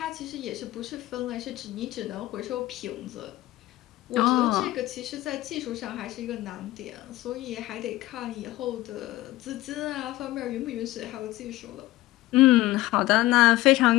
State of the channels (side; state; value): right; quieter; 17.2 dB